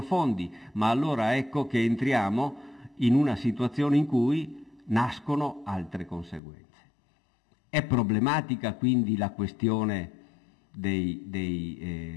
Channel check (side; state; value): right; drops out; at 6.4 s